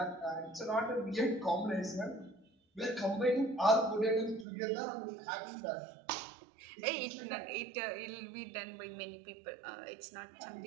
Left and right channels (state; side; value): drops out; left; at 4.5 s